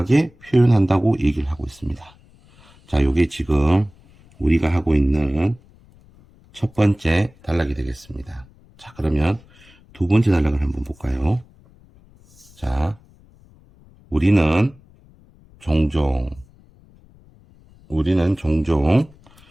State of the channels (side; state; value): left; noise; rumble, 27 dB below the sound